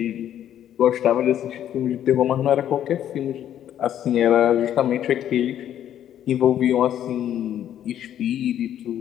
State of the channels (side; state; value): right; quieter; 10.7 dB